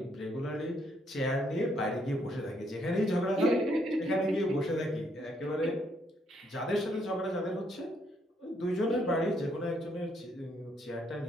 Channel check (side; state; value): both; normal; correlation 0.72